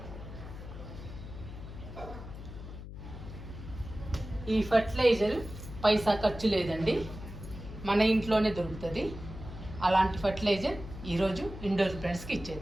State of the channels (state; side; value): noise; left; hum, 11 dB below the sound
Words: ఈ ఫర్టిలైజర్ పైసా ఖర్చు లేదండి, మన ఇంట్లోనే దొరుకుతుంది. అలాంటి ఫర్టిలైజర్ ఈరోజు ఇండోర్ ప్లాంట్స్కి